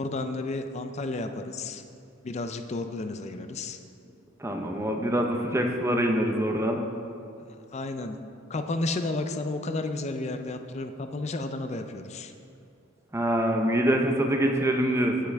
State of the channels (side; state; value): both; normal; correlation 0.65